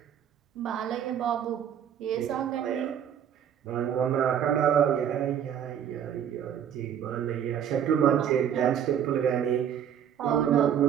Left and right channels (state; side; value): quieter; left; 9.1 dB